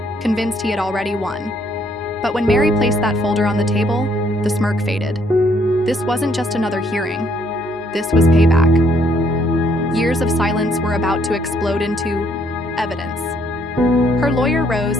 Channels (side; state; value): both; normal; correlation 0.68